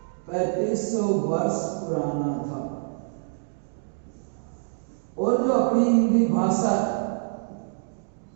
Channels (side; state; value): left; silent; digital silence